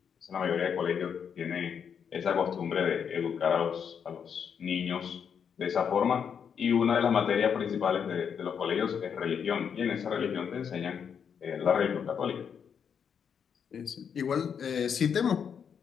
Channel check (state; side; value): quieter; right; 7.3 dB